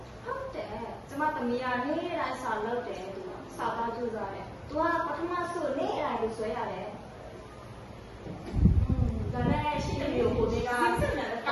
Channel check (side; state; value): both; identical; correlation 1.00